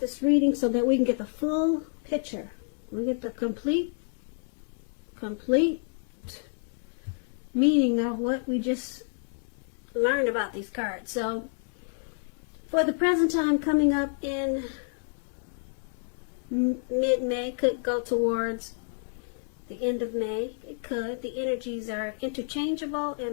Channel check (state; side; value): silent; right; digital silence